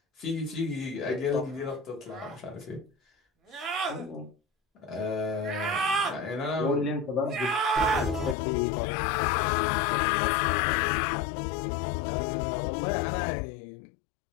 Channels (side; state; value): right; drops out; at 8.3 s